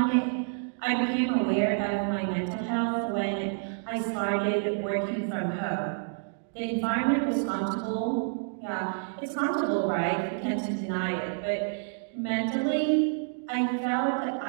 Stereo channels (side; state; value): left; silent; digital silence